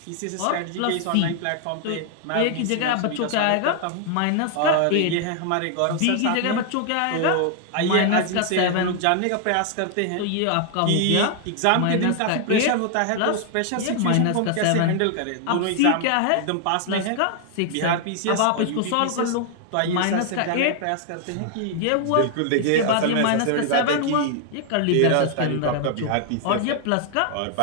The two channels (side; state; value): both; different; correlation 0.00